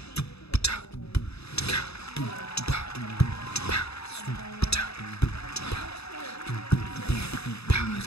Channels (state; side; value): late; right; 0.79 ms